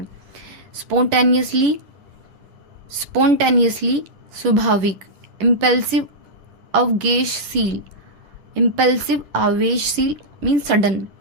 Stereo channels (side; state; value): left; late; 10 ms